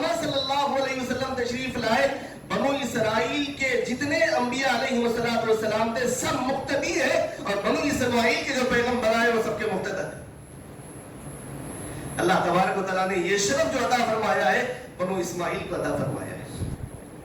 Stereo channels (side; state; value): both; identical; correlation 1.00